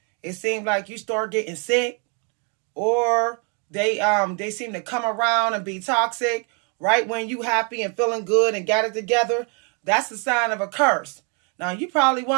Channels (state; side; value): quieter; left; 37.2 dB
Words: it seems like you start getting sick. Or they seem to come around and be toxic right when you happy and feeling good and got it together. That's the sign of a curse. Now you probably